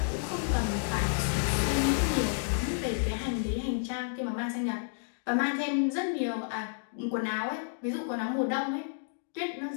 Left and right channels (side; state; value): right; silent; digital silence